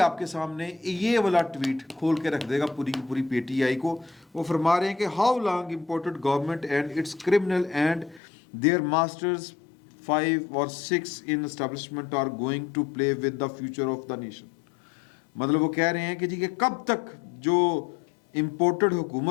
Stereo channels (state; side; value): drops out; right; at 8.2 s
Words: کے سامنے یہ والا ٹویٹ کھول کے رکھ دے گا پوری کی پوری پی ٹی آئی کو. وہ فرما رہے ہیں کہ how long imported government and its criminal and their masters 5 or 6 in establishment are going to play with the future of the nation. مطلب وہ کہہ رہے ہیں کہ جی کہ کب تک جو امپورٹڈ